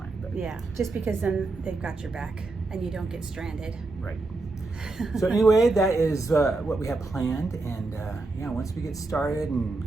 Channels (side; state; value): left; quieter; 3.4 dB